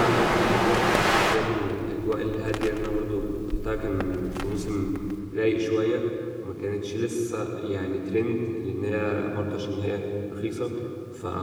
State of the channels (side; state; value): both; identical; correlation 1.00